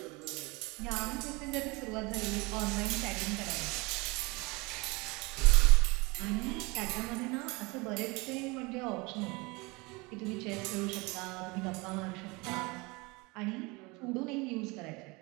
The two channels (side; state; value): left; quieter; 25.7 dB